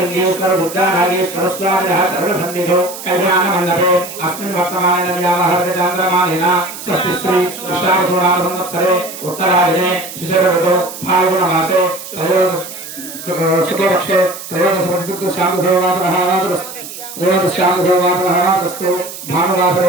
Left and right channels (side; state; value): right; noise; hiss, 12 dB below the sound